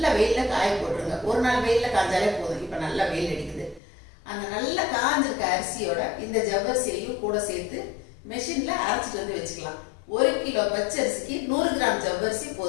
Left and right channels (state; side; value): drops out; right; at 3.8 s